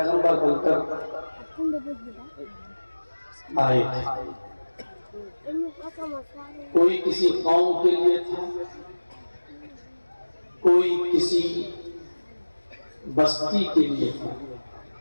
बनकर आए थे। कोई किसी कौम के लिए था, कोई किसी बस्ती के लिए था,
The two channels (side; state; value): both; inverted; correlation -1.00